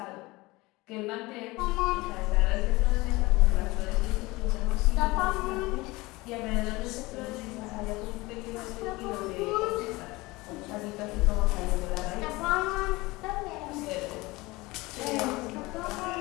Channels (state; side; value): quieter; right; 21.8 dB